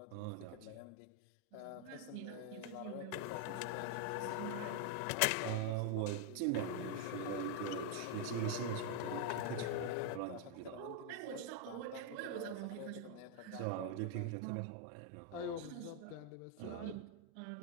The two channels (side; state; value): both; different; correlation 0.00